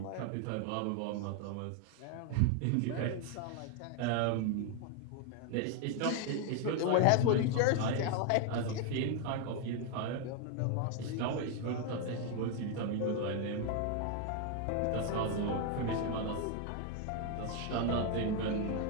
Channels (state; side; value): different; both; correlation 0.01